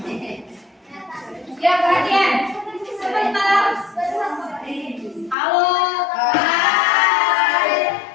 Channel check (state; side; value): drops out; right; at 5.4 s